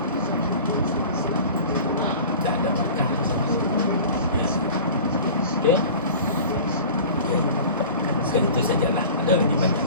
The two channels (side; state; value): both; inverted; correlation -0.40